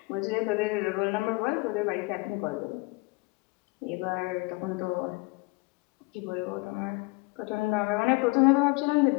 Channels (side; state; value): right; quieter; 26.2 dB